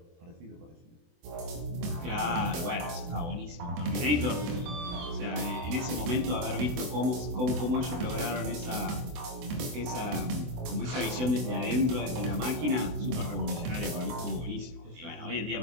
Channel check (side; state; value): left; late; 24 ms